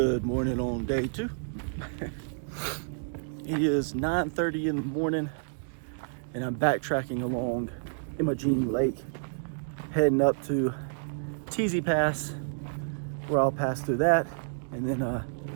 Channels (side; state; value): left; silent; digital silence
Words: morning on day 2. It is 9:30 in the morning, and I'm backtracking along Imogene Lake, heading up to Teasy Pass, where I'll pass through that, and then